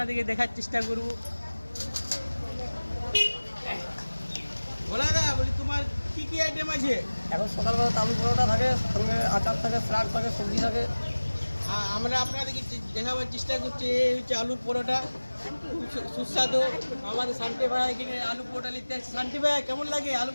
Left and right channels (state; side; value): inverted; both; correlation -1.00